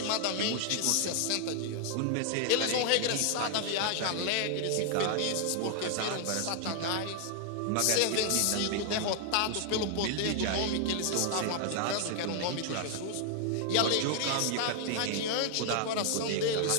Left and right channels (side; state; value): both; different; correlation 0.00